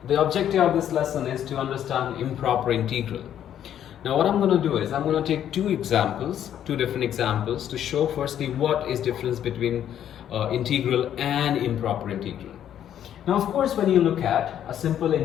the objective of this lesson is to understand improper integral. Now what I'm going to do is I'm going to take two different examples to show firstly what is difference between integral and improper integral. Now of course when you look at a simple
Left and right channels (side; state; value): right; quieter; 10.3 dB